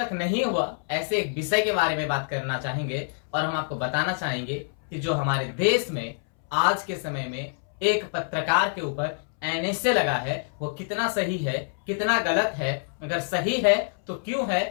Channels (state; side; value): silent; right; 61 dB below the other